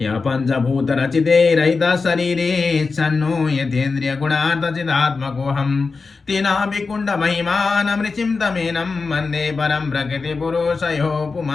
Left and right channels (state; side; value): quieter; right; 4.4 dB